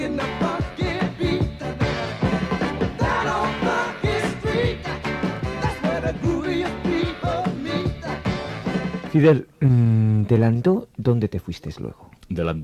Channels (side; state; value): both; identical; correlation 1.00